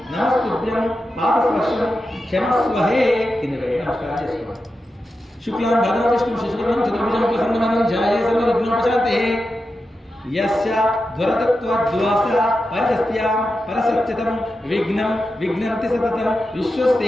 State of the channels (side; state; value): both; normal; correlation 0.90